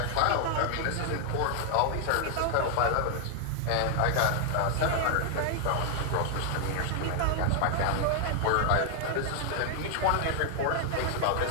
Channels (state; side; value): different; both; correlation 0.00